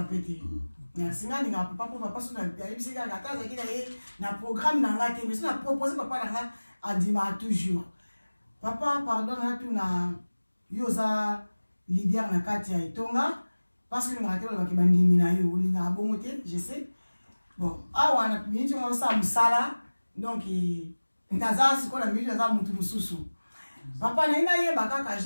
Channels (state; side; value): inverted; both; correlation -1.00